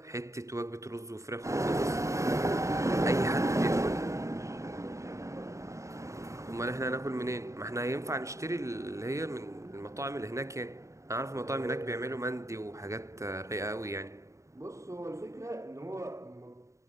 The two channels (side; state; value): left; late; 0.15 ms